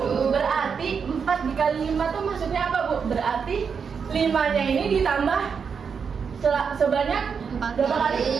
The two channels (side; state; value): left; quieter; 6.2 dB